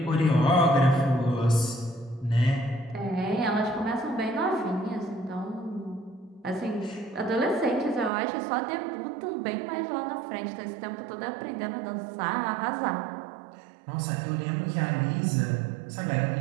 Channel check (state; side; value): drops out; left; at 8.1 s